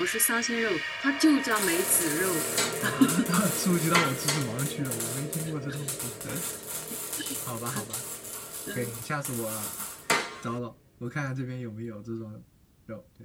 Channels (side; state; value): both; identical; correlation 1.00